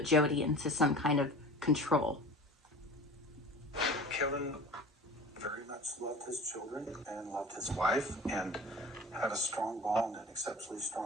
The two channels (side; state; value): both; normal; correlation 0.39